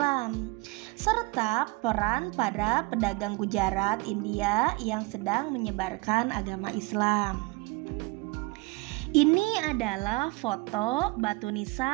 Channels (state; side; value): quieter; left; 24.5 dB